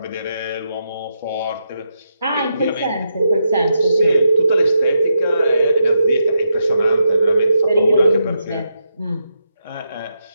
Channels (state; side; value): inverted; both; correlation -0.83